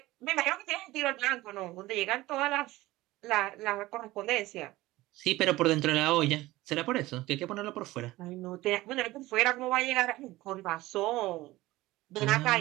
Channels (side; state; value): left; quieter; 18.2 dB